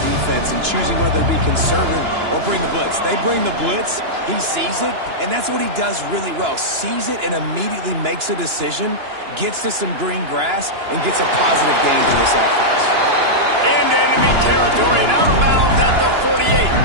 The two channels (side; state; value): left; late; 2.9 ms